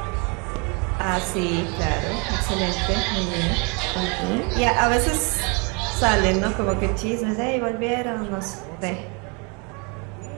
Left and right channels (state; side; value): quieter; left; 32.3 dB